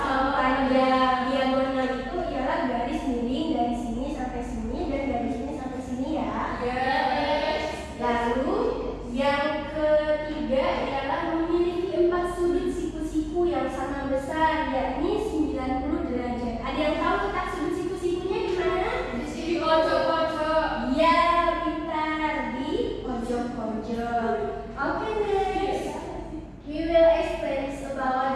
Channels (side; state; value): both; identical; correlation 1.00